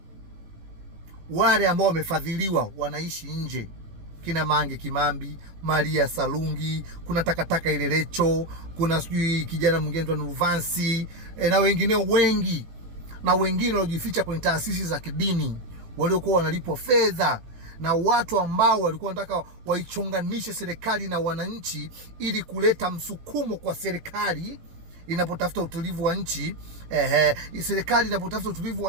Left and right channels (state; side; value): late; left; 18 ms